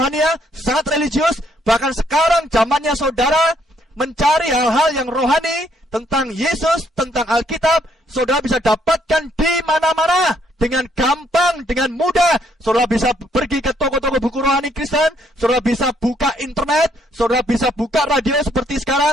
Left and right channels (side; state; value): both; normal; correlation 0.70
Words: sangat religius. Bahkan sekarang zamannya saudara mencari hal-hal yang rohani tentang Yesus, tentang Alkitab. Saudara bisa dapatkan di mana-mana. dengan gampang, dengan mudah. Saudara bisa pergi ke toko-toko buku rohani Kristen, saudara bisa buka internet, saudara bisa buka radio seperti